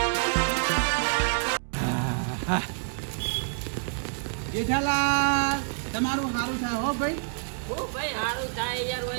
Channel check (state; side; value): silent; left; digital silence